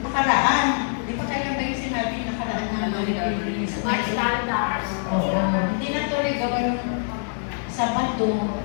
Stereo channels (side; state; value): right; silent; digital silence